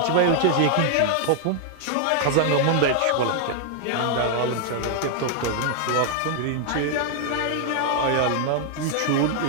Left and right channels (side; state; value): both; different; correlation 0.00